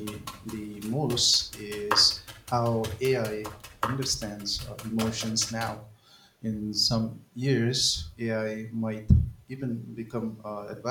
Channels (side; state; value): both; identical; correlation 1.00